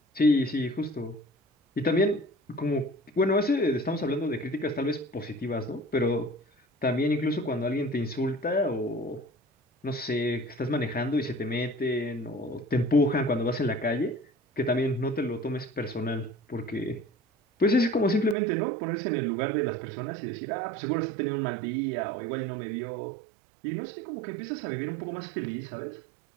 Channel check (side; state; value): left; drops out; at 18.4 s